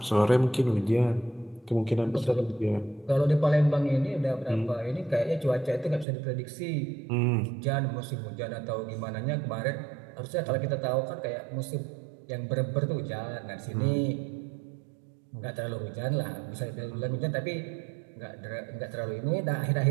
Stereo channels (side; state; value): left; drops out; at 6.1 s